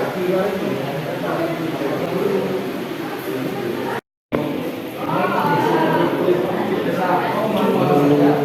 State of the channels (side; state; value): both; identical; correlation 1.00